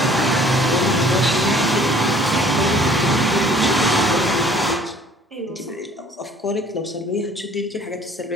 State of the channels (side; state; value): both; normal; correlation 0.54